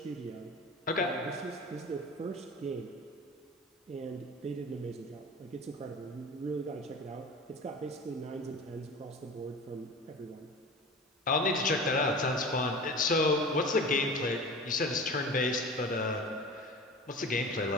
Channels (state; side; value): normal; both; correlation 0.35